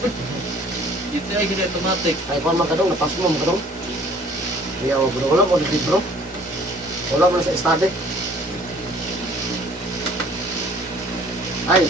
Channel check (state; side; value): normal; both; correlation 0.54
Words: Dito ay hindi automatic. Ay, kung man kadong, napas mo ang kadong. Iya, wala mo, libro. Wala mo na sa estade. Ay,